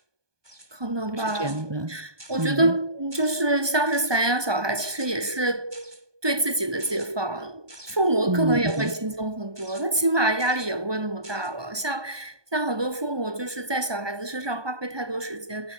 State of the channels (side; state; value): left; late; 1.2 ms